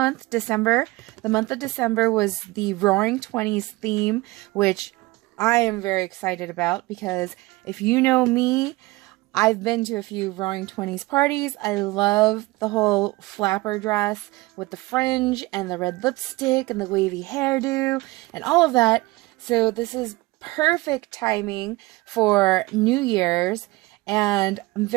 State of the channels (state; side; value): quieter; left; 21.2 dB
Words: December. The month of December was the Roaring Twenties theme, which I am very excited about because if you know me, I've been to a few Roaring Twenties parties. I love the whole flapper dress with the fringe and the red lipstick and the wavy hairdo and all of that. So this is perfect timing for New Year's, and I'm